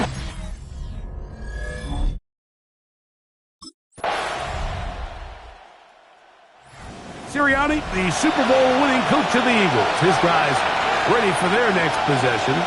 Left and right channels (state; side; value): identical; both; correlation 1.00